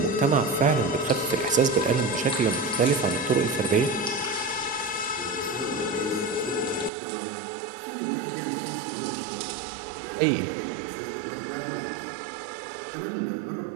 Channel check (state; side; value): drops out; left; at 6.9 s